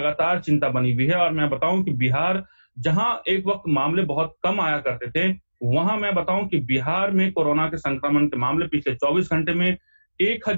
चिंता बनी हुई है। और मैं बताऊं कि बिहार, जहां एक वक्त मामले बहुत कम आया करते थे, वहां मैं बताऊं कि बिहार में कोरोना के संक्रमण के मामले पिछले 24 घंटे में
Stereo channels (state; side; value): inverted; both; correlation -1.00